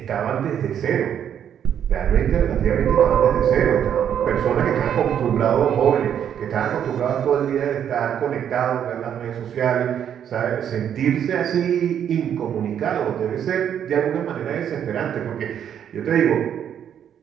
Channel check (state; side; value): quieter; left; 9.1 dB